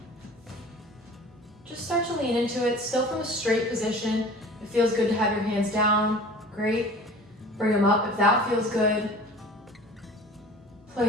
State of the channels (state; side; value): normal; both; correlation 0.43